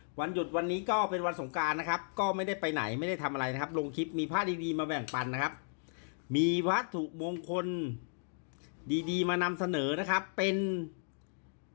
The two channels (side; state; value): right; silent; digital silence